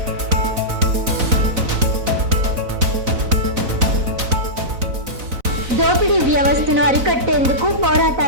దోపిడీ వ్యవస్థను అరికట్టేందుకు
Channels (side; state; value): left; late; 4.0 ms